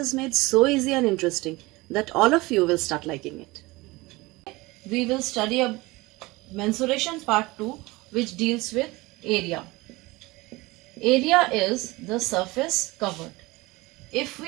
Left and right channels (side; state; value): left; quieter; 21.8 dB